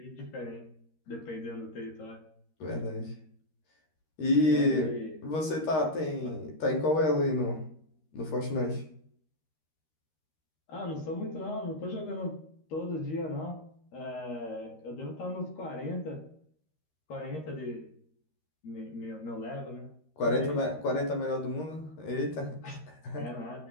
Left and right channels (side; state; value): right; late; 13 ms